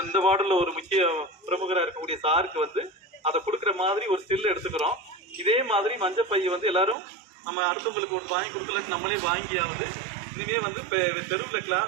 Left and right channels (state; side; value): drops out; left; at 7.0 s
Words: இந்த வார்டில் ஒரு முக்கிய பிரமுகராக இருக்கக்கூடிய சாருக்கு வந்து அதை கொடுக்குற மாதிரி ஒரு ஸ்டில் எடுத்துக்கிறோம். இதே மாதிரி மஞ்சள் பையை வந்து எல்லாரும் நம்ம அடுத்தவங்களுக்கு ஒன்று வாங்கி கொடுக்கலன்னு நம்மளே வாங்கியாவது இனிமேல் வந்து தெருவில்